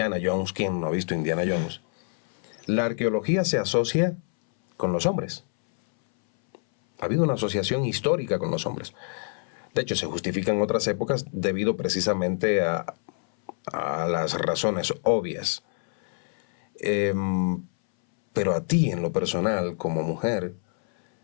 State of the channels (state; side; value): silent; right; 61 dB below the other